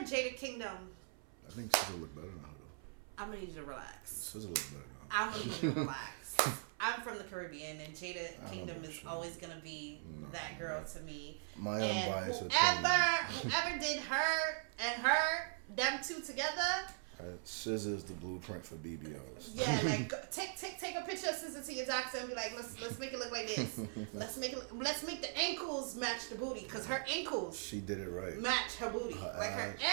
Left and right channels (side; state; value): left; silent; 51 dB below the other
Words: Jada Kingdom. I think SZA look better than her, though. I'm gonna need you to relax. SZA look better than her. I'm gonna need you to relax. I'm from the Caribbean, and Jada Kingdom is always gonna be that girl to me. My and whoever did her and them two together. SZA is the blueprint for BBLs. Yeah, like take a picture of SZA to your doctor and be like, let's make it look like this. Let's make the ankles match the booty, because her ankles. She did it right. Match her booty. Her